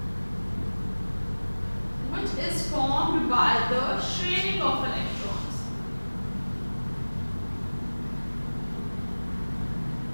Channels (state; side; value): inverted; both; correlation -1.00